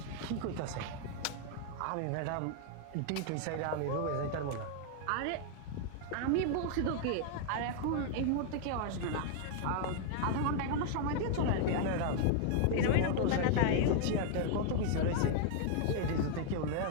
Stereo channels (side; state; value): both; different; correlation 0.00